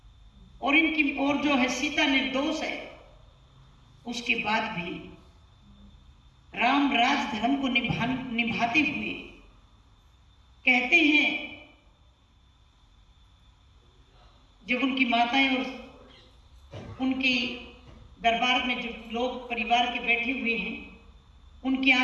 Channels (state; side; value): identical; both; correlation 1.00